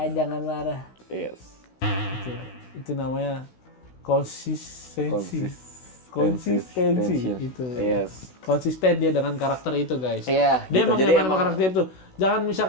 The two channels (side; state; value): right; late; 16 ms